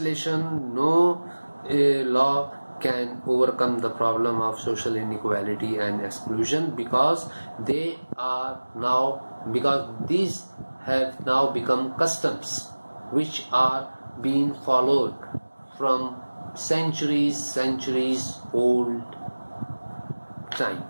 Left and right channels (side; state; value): both; inverted; correlation -1.00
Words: no law can overcome the problem of social inequality and exclusion, because these have now become customs which are being followed from centuries old